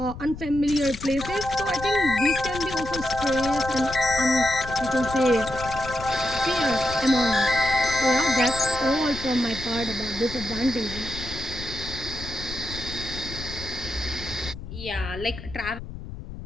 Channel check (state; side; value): noise; left; rumble, 11 dB below the sound